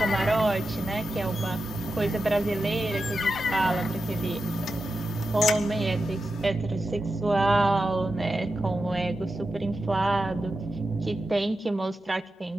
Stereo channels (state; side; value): normal; both; correlation 0.90